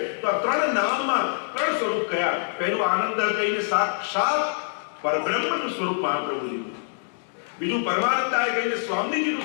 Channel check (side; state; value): right; silent; digital silence